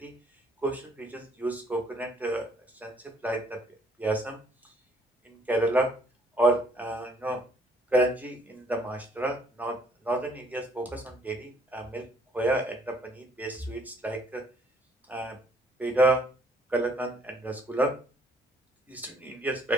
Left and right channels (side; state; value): both; normal; correlation 0.64